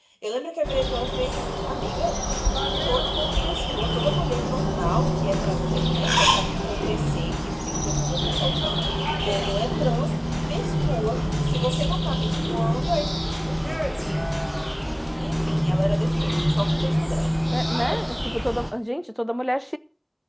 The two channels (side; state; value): both; identical; correlation 1.00